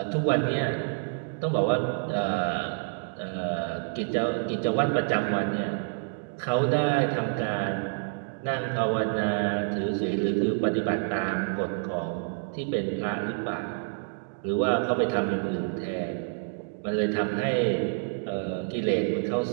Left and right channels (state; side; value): silent; left; 59 dB below the other